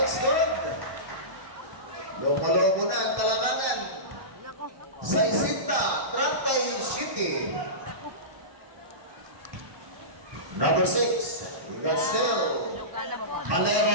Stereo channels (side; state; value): left; late; 1.1 ms